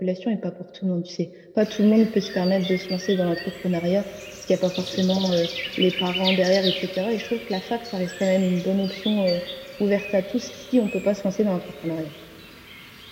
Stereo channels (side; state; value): both; identical; correlation 1.00